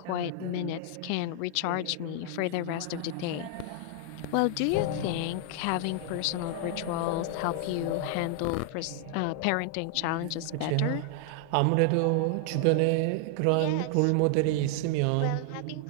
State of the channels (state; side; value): different; both; correlation 0.00